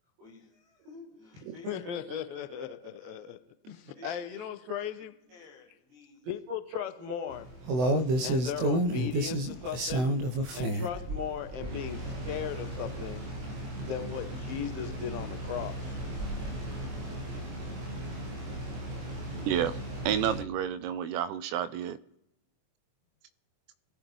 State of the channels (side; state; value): left; late; 24 ms